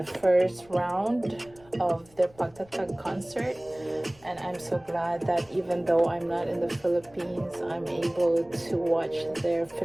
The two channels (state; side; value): noise; left; rumble, 27 dB below the sound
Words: first round of their Pagtatag concert. And I'm so glad that even though I'm not in the Philippines, I'm able to watch their